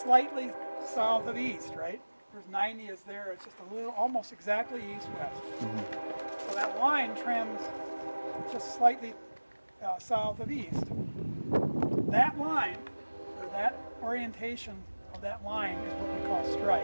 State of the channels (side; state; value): both; inverted; correlation -1.00